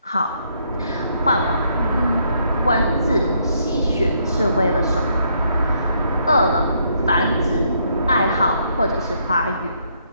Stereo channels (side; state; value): both; inverted; correlation -0.72